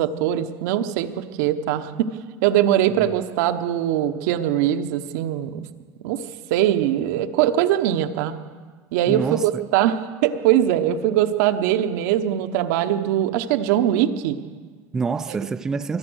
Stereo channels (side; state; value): left; quieter; 10.7 dB